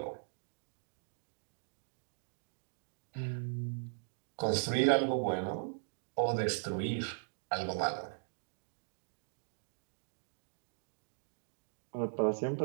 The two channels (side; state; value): left; silent; digital silence